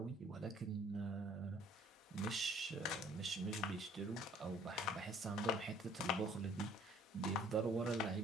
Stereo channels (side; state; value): both; normal; correlation 0.57